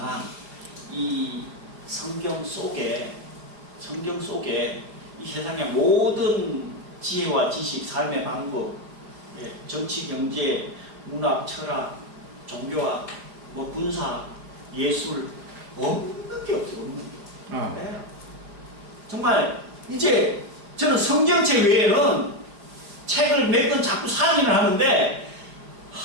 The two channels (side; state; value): left; late; 5.0 ms